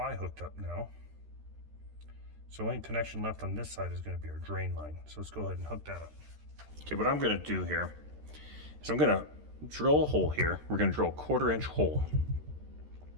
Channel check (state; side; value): late; left; 13 ms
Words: hooked up now. So only connection left on this side is going to be our drain line. So let's go ahead and hook that up. Okay, what I'm going to do here is I'm going to drill a hole here. We're going to drill a 1/4-inch hole.